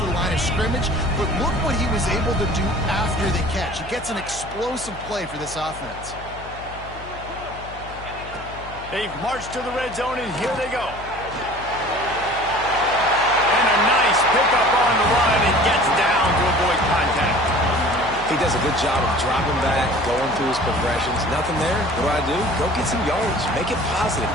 the line of scrimmage, but look what he was able to do after the catch. He gets an explosive play for this offense. They've marched to the red zone, and here they go. And a nice pickup on the run, and gets down to avoid contact. He does a good job of dropping back, going through his progressions. Nothing there. What do? Go get some yards. Make it positive.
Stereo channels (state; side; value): noise; left; hum, 15 dB below the sound